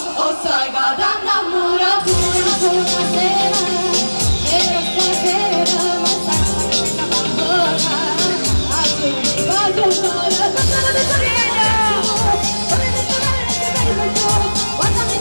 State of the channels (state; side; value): inverted; both; correlation -1.00